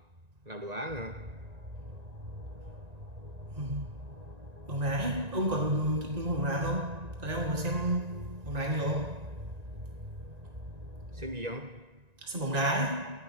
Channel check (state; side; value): late; left; 1.9 ms